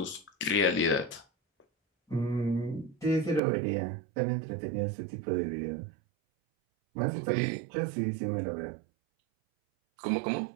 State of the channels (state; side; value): drops out; left; at 3.4 s